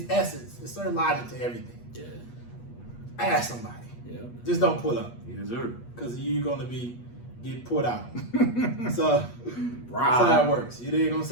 essence. It's certain logic to everything. Yeah. Ask somebody. Yeah. Just don't pull up. Yes, sir. Because you're going to get put out. So, that's how it works. You dig what I'm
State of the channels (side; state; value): right; late; 8.4 ms